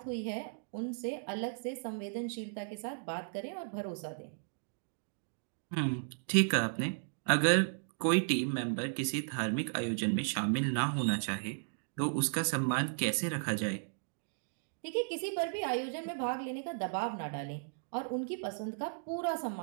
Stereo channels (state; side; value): silent; left; digital silence